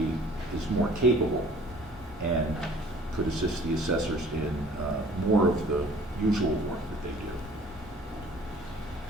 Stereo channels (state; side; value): normal; both; correlation 0.52